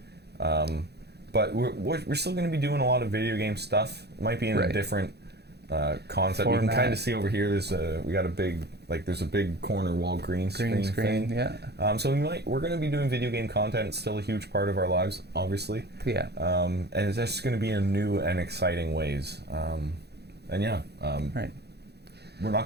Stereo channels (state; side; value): late; left; 0.48 ms